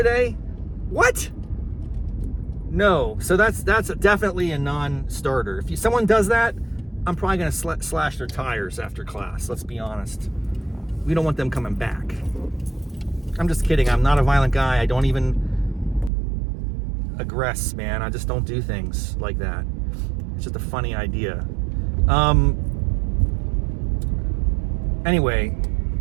What? No. So that's definitely a non-starter. If someone does that, I'm probably going to slash their tires after class. Let's be honest. We don't want them coming back. I'm just kidding. I'm not a violent guy. I don't even aggress, man. I just don't do things like that. It's just a funny idea. Anyway,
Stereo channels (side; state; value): left; drops out; at 16.1 s